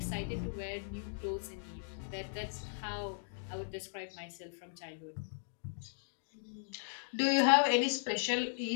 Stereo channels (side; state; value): right; silent; digital silence